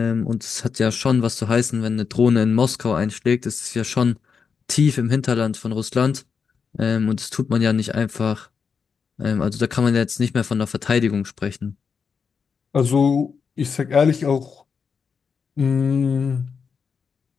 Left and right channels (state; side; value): quieter; right; 5.9 dB